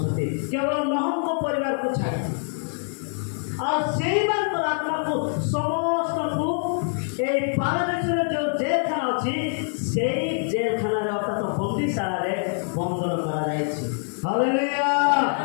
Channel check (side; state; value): right; silent; 62 dB below the other